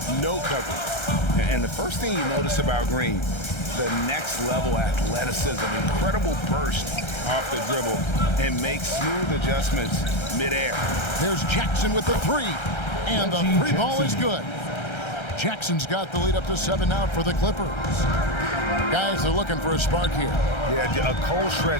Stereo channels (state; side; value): late; right; 1.3 ms